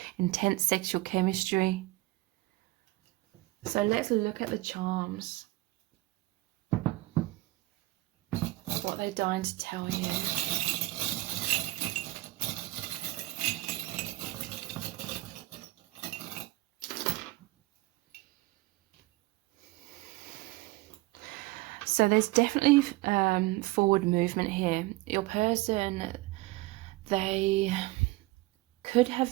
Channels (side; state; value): left; quieter; 19.6 dB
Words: intense sexual chemistry. So let's look at the charms. What they're dying to tell you. So there's definitely forward movement here. Your person, they could